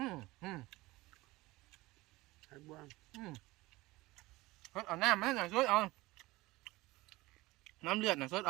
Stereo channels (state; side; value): quieter; left; 20.1 dB